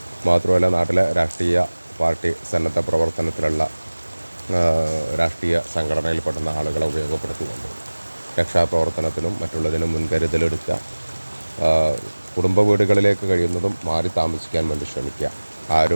മാത്രമല്ല നാട്ടിലെ രാഷ്ട്രീയ പാർട്ടി സന്നദ്ധ പ്രവർത്തനത്തിലുള്ള രാഷ്ട്രീയ സംഘടനയിൽപ്പെടുന്ന ആളുകളെ ഉപയോഗപ്പെടുത്തിക്കൊണ്ട് രക്ഷാപ്രവർത്തനത്തിനും മറ്റുള്ളതിനും മുൻകരുതലെടുക്കുക. കുടുംബ വീടുകളിലേക്ക് കഴിയുന്നതും മാറി താമസിക്കാൻ വേണ്ടി ശ്രമിക്കുക.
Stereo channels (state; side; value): inverted; both; correlation -1.00